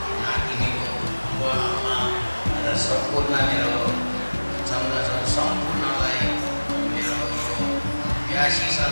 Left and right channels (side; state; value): both; inverted; correlation -1.00